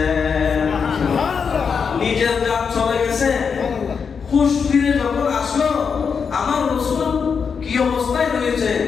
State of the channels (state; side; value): quieter; right; 6.1 dB